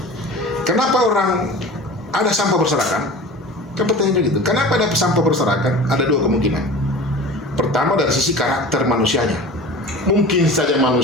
kenapa orang ada sampah berserakan? Kan pertanyaannya gitu. Kenapa ada sampah berserakan? Ada dua kemungkinan. Pertama dari sisi karakter manusianya. Mungkin saja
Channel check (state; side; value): normal; both; correlation 0.37